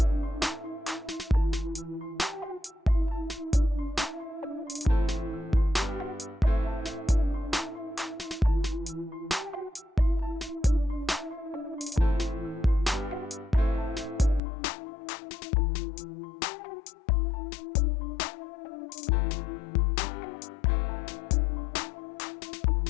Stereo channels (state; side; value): drops out; right; at 14.4 s